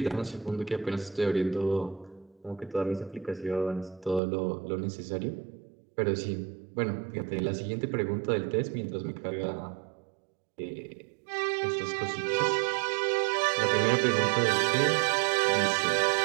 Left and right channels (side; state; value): left; drops out; at 4.2 s